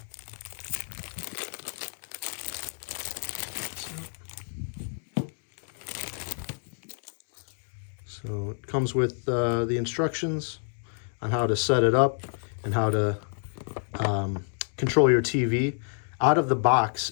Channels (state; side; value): silent; right; 59 dB below the other